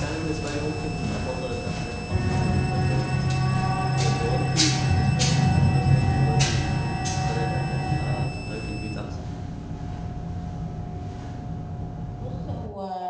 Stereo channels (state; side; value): identical; both; correlation 1.00